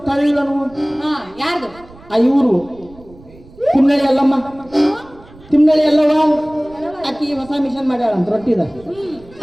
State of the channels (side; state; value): right; noise; rumble, 23 dB below the sound